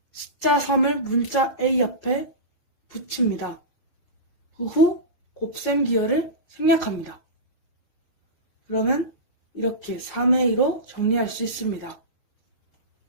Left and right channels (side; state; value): right; late; 5.6 ms